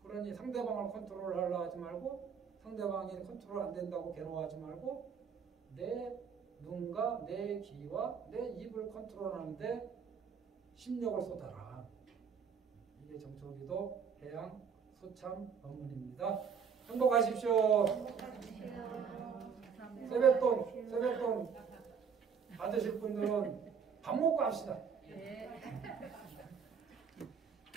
그러니 상대방을 컨트롤하려 하지 말고, 상대방이 컨트롤 안 된다고 괴로워하지 말고, 내 눈과 내 귀와 내 입을 컨트롤하는데 심력을 쏟아라. 이게 정초기도 해양 소참 법문입니다. 행복하십시오. 세뱃돈 받으실 분들은 밥 먹고 합시다. 네.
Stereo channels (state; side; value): quieter; left; 6.6 dB